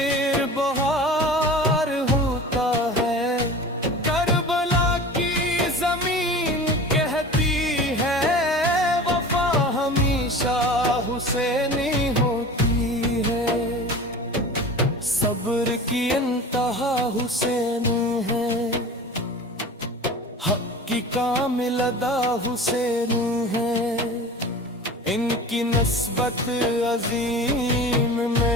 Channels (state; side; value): normal; both; correlation 0.37